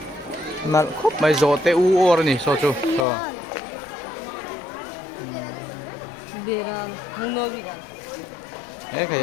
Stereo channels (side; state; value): right; drops out; at 3.1 s